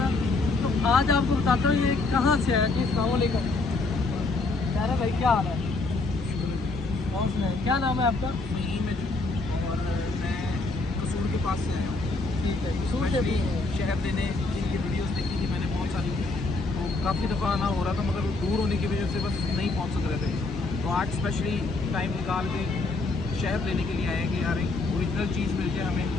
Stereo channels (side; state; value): right; quieter; 3.4 dB